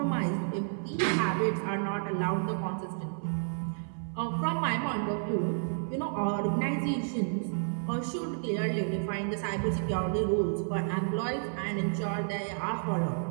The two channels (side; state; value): left; silent; 57 dB below the other